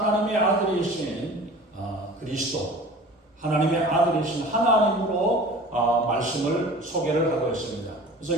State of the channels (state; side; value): normal; both; correlation 0.42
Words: 아들이신 그리스도, 하나님의 아들이신 하나님으로 말씀을 소개를 하고 있습니다.